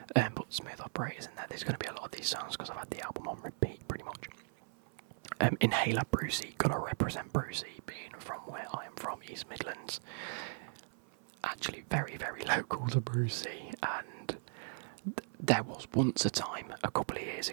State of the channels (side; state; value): left; silent; 53 dB below the other